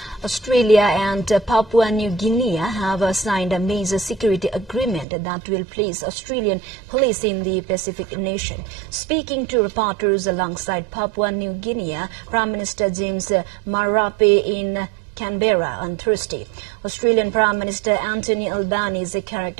Australia and Papua New Guinea have signed a major security agreement that will place Australian police in the Pacific nation. Speaking to reporters alongside Papua New Guinea, Prime Minister James Marape in Canberra on Thursday, Australian Prime Minister Anthony Albanese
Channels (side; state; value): left; drops out; at 5.1 s